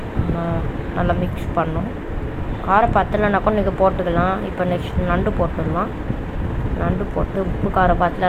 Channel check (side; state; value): both; identical; correlation 1.00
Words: நல்லா மிக்ஸ் பண்ணணும். காரம் பத்தலைனாக்கும் நீங்கள் போட்டுக்கலாம். இப்போ நெக்ஸ்ட் நண்டு போட்டுடலாம். நண்டு போட்டு உப்பு காரம்